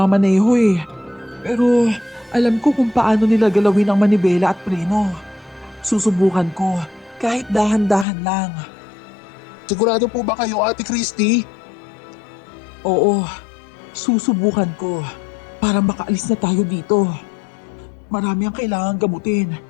eh. Pero alam ko kung paano nila galawin ang manibela at preno. Susubukan ko kahit dahan-dahan lang. Sigurado po ba kayo, Ate Christy? Oo, susubukan ko para makaalis na tayo dito. Marami ang kailangan gamutin,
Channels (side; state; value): right; drops out; at 8.1 s